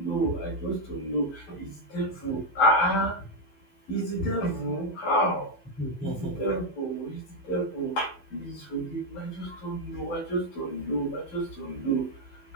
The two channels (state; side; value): late; right; 12 ms